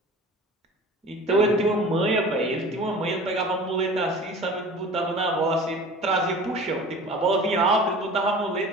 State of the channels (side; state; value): both; normal; correlation 0.41